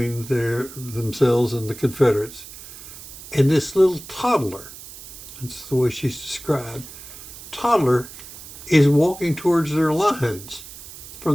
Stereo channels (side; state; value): right; noise; hiss, 15 dB below the sound